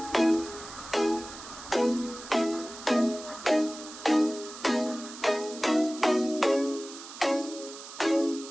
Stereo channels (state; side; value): noise; right; hiss, 14 dB below the sound